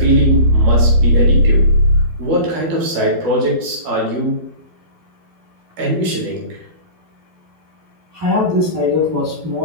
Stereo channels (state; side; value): late; left; 12 ms